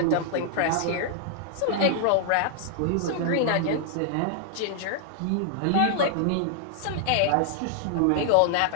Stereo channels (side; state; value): both; different; correlation -0.01